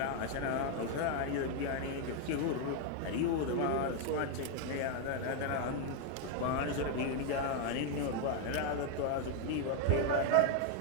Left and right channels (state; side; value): different; both; correlation 0.01